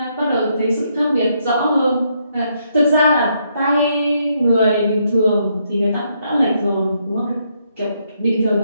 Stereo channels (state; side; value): inverted; both; correlation -0.75